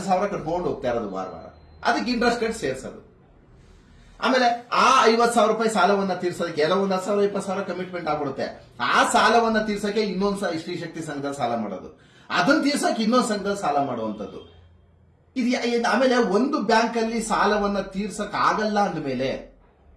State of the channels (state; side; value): identical; both; correlation 1.00